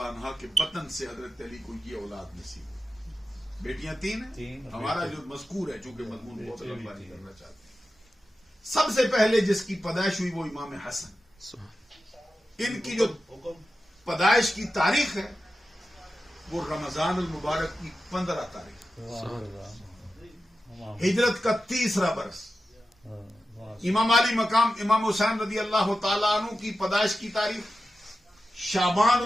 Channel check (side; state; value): both; normal; correlation 0.92